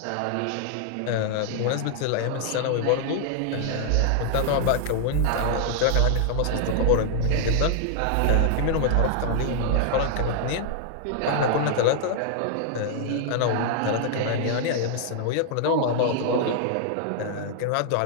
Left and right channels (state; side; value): different; both; correlation -0.01